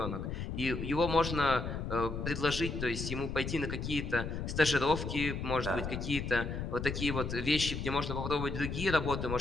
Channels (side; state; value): left; noise; rumble, 4 dB below the sound